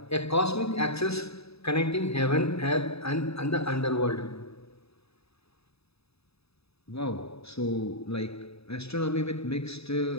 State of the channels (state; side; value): late; right; 0.78 ms